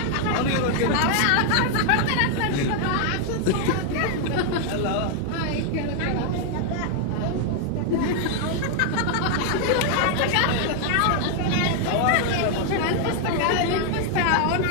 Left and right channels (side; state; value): both; different; correlation 0.00